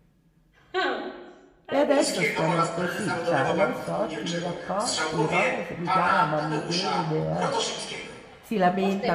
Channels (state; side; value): identical; both; correlation 1.00